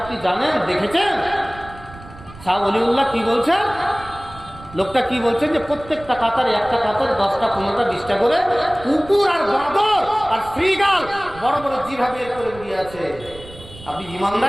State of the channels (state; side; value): noise; right; rumble, 18 dB below the sound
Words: আপনি জানেন, দেখেছেন? শাহ অলিউল্লাহ কি বলছেন? লোকটা কি বলছেন যে প্রত্যেকটা কাতারে, একটা কাতারে 10টা 15টা 20টা করে কুকুর আর বাঁদর আর শ্রীগাল বড় বড় জিভা বের করে দিয়ে আছে। আপনি